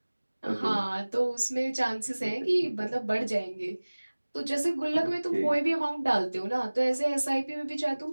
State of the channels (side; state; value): both; inverted; correlation -1.00